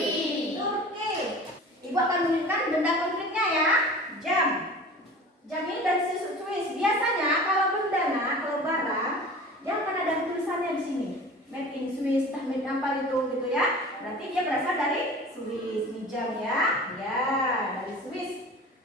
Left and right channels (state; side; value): normal; both; correlation 0.39